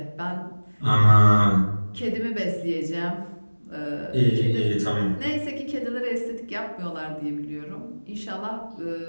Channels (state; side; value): inverted; both; correlation -1.00